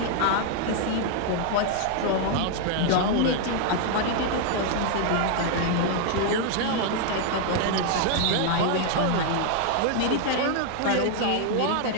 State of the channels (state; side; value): different; both; correlation 0.00